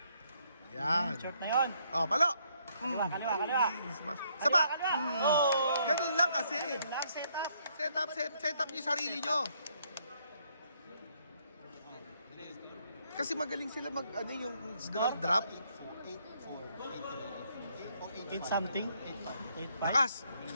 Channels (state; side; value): inverted; both; correlation -0.71